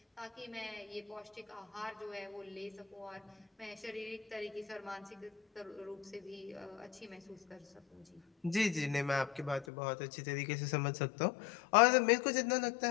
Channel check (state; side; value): drops out; right; at 9.7 s